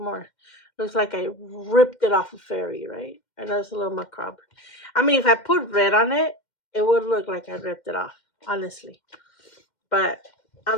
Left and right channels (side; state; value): right; late; 2.1 ms